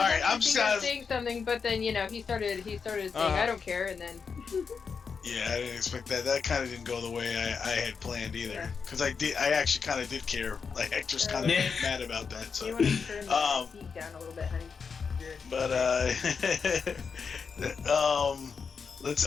I'm actually sad- saying something, but then he started saying I don't care, and then Yeah, I didn't expect that. That kind of didn't go the way I had planned either. Because I actually kind of did care. Like Hector's kind of Yeah. mad about that. So, you want to turn Um, the heat down a little bit, honey. but let's.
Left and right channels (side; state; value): right; quieter; 5.7 dB